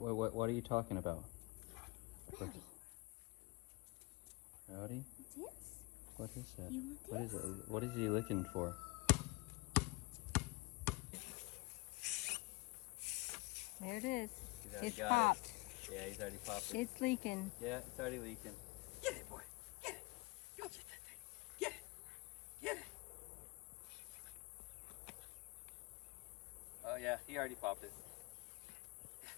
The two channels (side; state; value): right; quieter; 24.6 dB